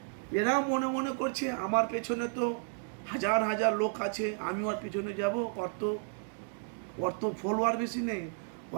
এরা মনে মনে করছে আমার পেছনে তো হাজার হাজার লোক আছে, আমি ওর পিছনে যাব, ওর তো ফলোয়ার বেশি নেই,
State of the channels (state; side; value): silent; left; 56 dB below the other